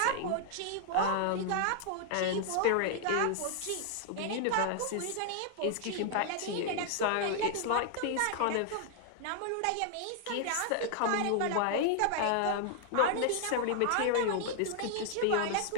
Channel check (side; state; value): both; different; correlation 0.00